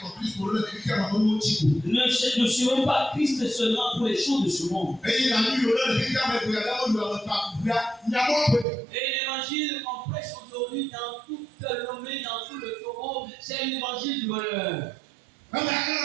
Ne suivons pas Christ seulement pour les choses de ce monde. Et l'évangile qu'on prêche aujourd'hui dans toute l'homme, dans tout le taureau, c'est l'évangile du bonheur.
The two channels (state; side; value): drops out; left; at 8.7 s